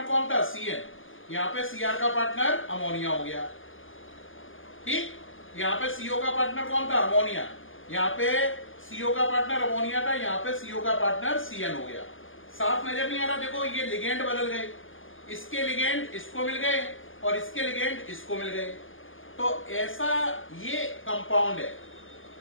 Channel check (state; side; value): late; right; 0.58 ms